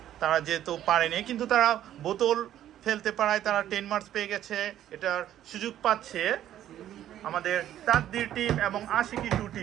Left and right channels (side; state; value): left; quieter; 11.8 dB